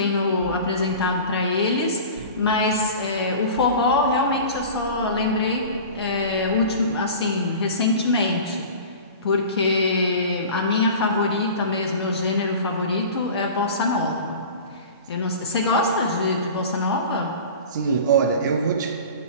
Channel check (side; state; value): both; inverted; correlation -0.37